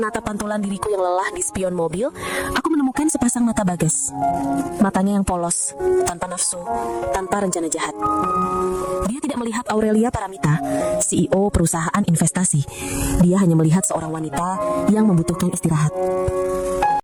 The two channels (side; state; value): both; identical; correlation 1.00